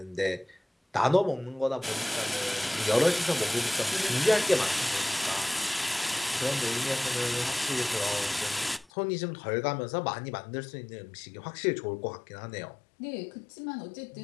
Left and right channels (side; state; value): right; drops out; at 8.8 s